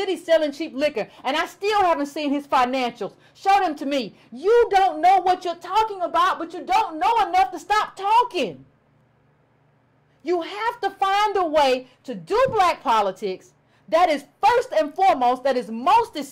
selling cheap liquor, and I still haven't seen his financials. Show them to me. You don't know what you're talking about, but you don't know enough to stop talking. You have to find a way to do black politics that is first and foremost, that is most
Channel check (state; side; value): identical; both; correlation 1.00